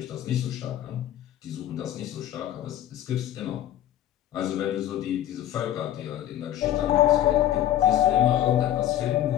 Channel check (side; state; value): right; quieter; 12.3 dB